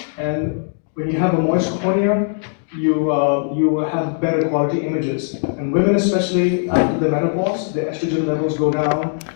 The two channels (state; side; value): silent; right; digital silence